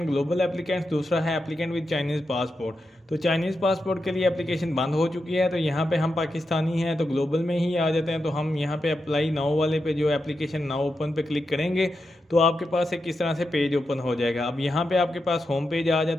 ग्लोबल एप्लीकेंट्स, दूसरा है एप्लीकेंट विद चाइनीज़ पासपोर्ट। तो चाइनीज़ पासपोर्ट के लिए एप्लीकेशन बंद हो चुकी है, तो यहाँ पे हम पाकिस्तानी हैं तो ग्लोबल में ही आ जाते हैं। तो हम यहाँ पे अप्लाई नाउ वाले पे, जो एप्लीकेशन नाउ ओपन पे क्लिक करेंगे तो आपके पास एक किस तरह से पेज ओपन हो जाएगा। अब यहाँ पे आपके पास होम पेज आ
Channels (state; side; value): normal; both; correlation 0.87